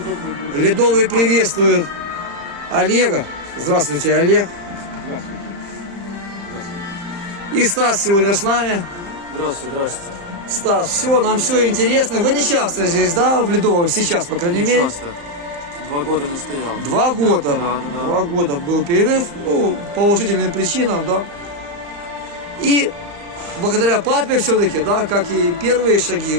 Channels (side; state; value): left; late; 35 ms